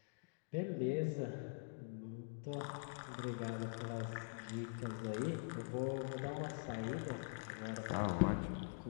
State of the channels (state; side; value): silent; right; digital silence